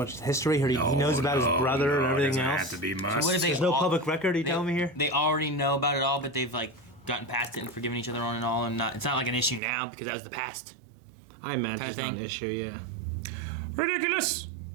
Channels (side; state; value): left; drops out; at 9.6 s